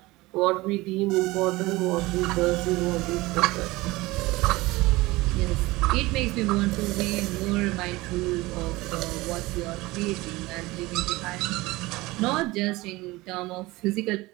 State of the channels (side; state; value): left; quieter; 20.6 dB